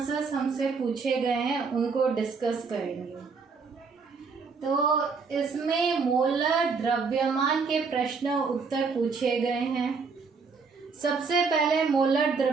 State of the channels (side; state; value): left; quieter; 5.0 dB